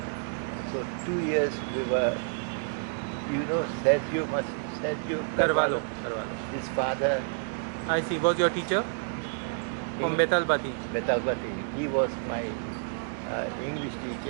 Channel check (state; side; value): silent; left; digital silence